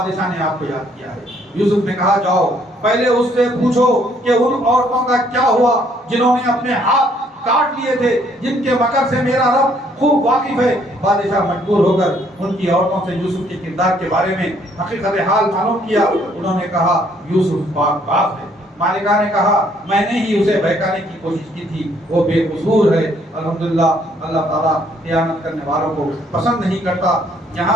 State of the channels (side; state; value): both; normal; correlation 0.66